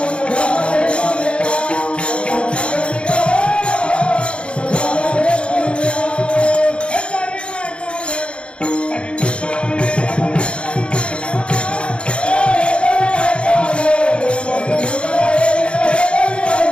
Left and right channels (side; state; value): right; late; 0.058 ms